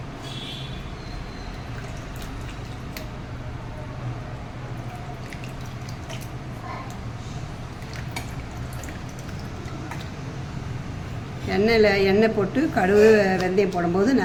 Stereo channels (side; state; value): both; identical; correlation 1.00